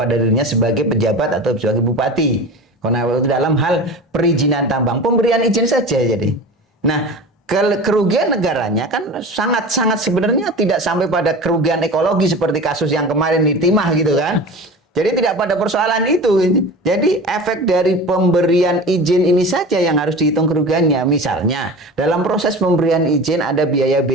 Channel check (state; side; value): normal; both; correlation 0.34